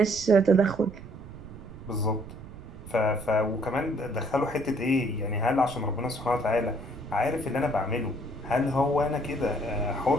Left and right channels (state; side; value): noise; right; rumble, 15 dB below the sound